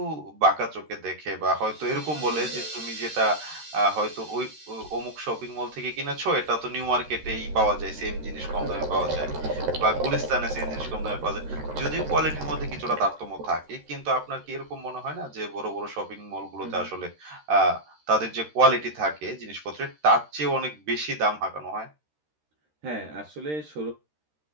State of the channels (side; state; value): left; late; 13 ms